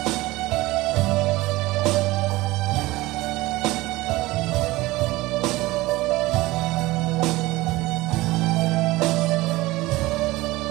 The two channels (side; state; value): left; quieter; 19.6 dB